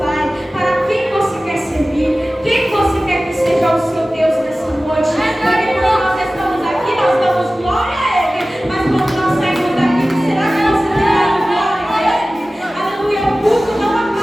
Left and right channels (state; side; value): normal; both; correlation 0.97